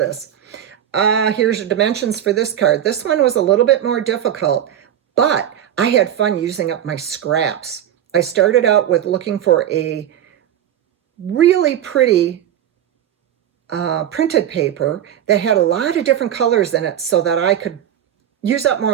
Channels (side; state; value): left; quieter; 10.5 dB